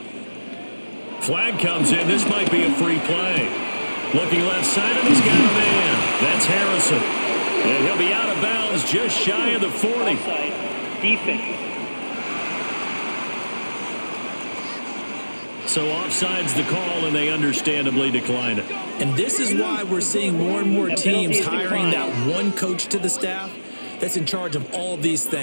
Flag comes in. This might be a free play. Looking left side, and he's got a man. That's Harrison. And he'll be out of bounds just shy of the 40. Defense. So offside's the call, and they understandably decline it. And this is why we're seeing more and more teams hiring that one coach to the staff that's in charge of all these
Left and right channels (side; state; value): both; inverted; correlation -1.00